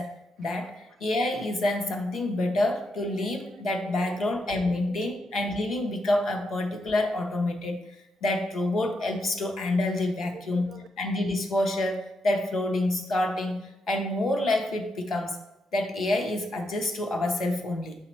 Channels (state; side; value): normal; both; correlation 0.82